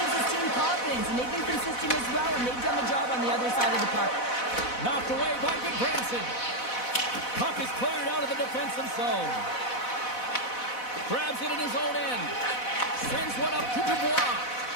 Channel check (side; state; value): right; late; 4.0 ms